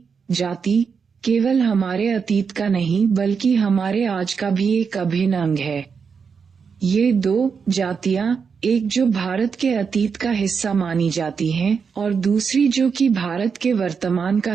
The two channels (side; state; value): left; quieter; 5.9 dB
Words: जाति केवल हमारे अतीत का नहीं बल्कि हमारे आज का भी एक अभिन्न अंग है। ये 2 जातियां, एक जो भारत के अतीत का हिस्सा मानी जाती हैं और दूसरी जो कि भारत के वर्तमान का